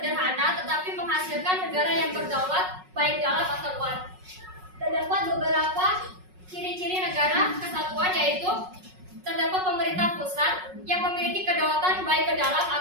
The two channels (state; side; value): late; left; 5.4 ms